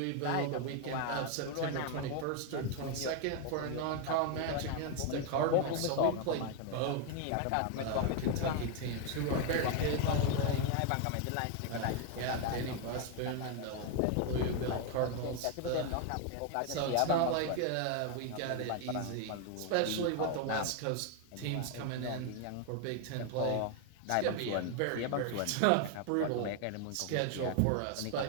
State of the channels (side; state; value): both; different; correlation 0.01